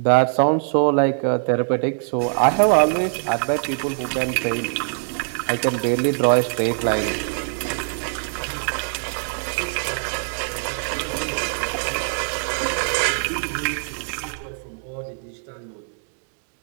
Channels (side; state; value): left; silent; digital silence